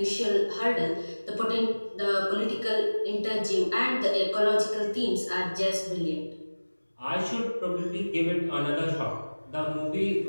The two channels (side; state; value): both; inverted; correlation -1.00